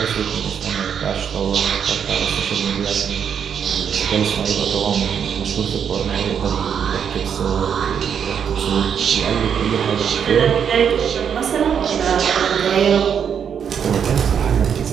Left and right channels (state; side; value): quieter; left; 7.7 dB